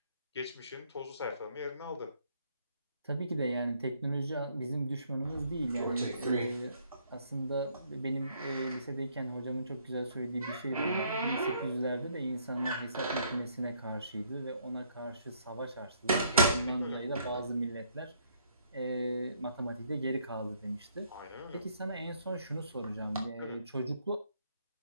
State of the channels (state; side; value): inverted; both; correlation -0.67